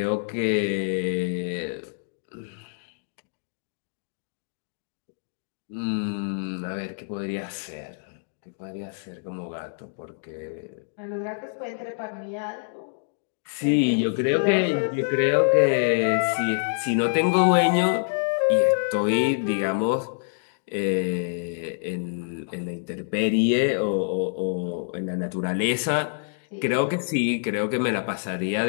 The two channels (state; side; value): silent; right; digital silence